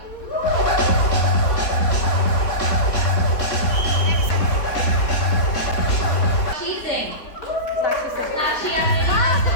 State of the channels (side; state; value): right; late; 3.9 ms